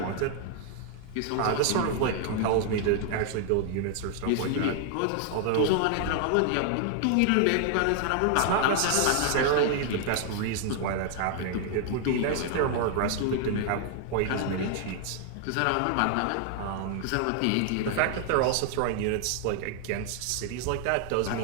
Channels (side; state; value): both; different; correlation 0.00